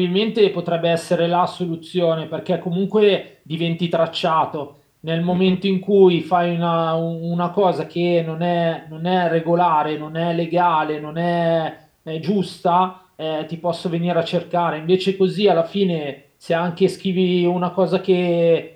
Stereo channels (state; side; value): identical; both; correlation 1.00